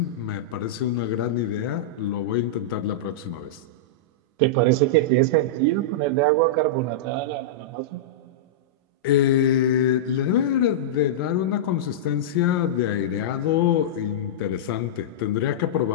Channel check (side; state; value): both; normal; correlation -0.11